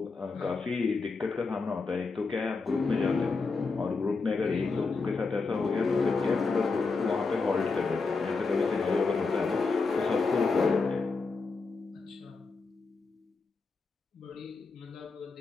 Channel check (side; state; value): right; quieter; 4.3 dB